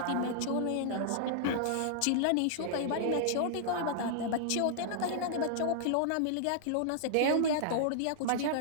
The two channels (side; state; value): both; different; correlation -0.01